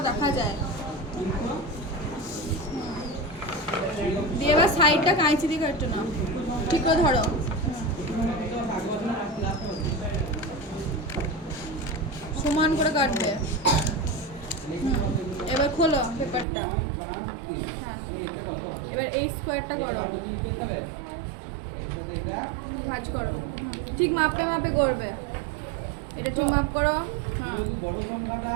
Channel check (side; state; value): left; drops out; at 16.4 s